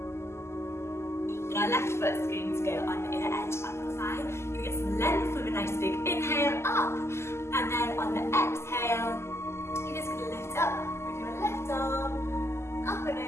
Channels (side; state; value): right; late; 0.13 ms